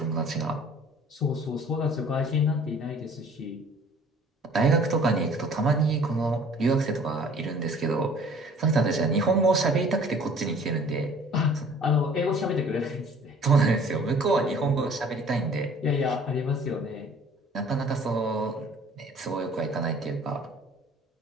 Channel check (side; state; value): both; normal; correlation 0.51